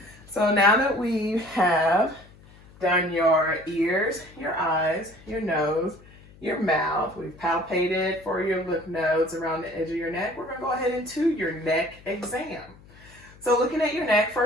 So now that we have done your ears, your eyes, your nose, your mouth, we've palpated for your lymph nodes around the edge of your neck, we're going to go ahead into your neck exam. So looking at your neck,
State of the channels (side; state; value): left; noise; hum, 24 dB below the sound